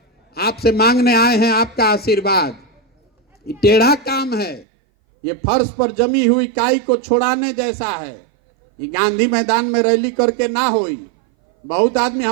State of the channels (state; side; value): drops out; left; at 4.7 s